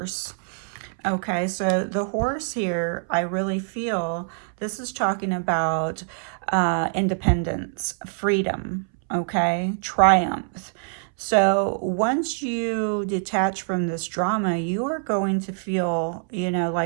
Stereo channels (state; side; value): silent; left; 62 dB below the other